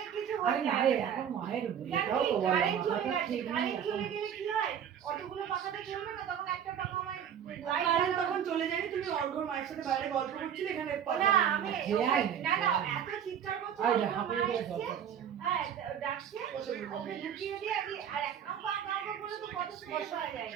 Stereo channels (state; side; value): quieter; left; 8.7 dB